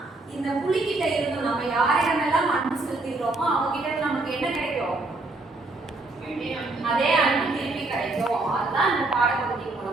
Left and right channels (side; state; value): left; quieter; 3.1 dB